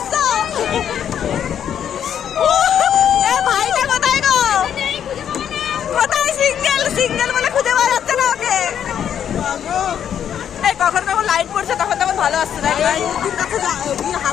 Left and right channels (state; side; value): quieter; right; 9.1 dB